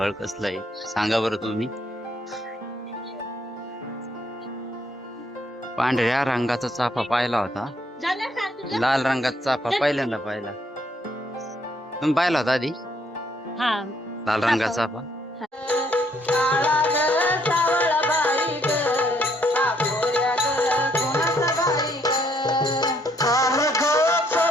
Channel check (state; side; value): normal; both; correlation 0.69